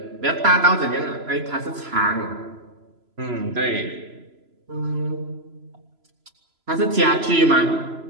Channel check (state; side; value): late; left; 3.0 ms